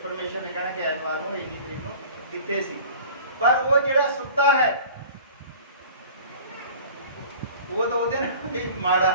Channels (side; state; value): both; inverted; correlation -0.44